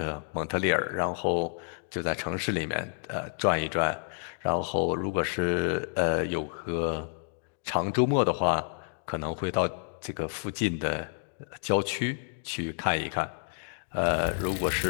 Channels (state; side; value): silent; right; digital silence